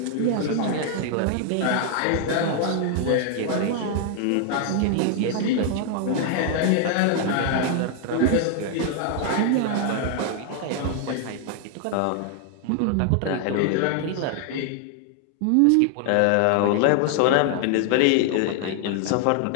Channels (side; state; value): both; different; correlation 0.00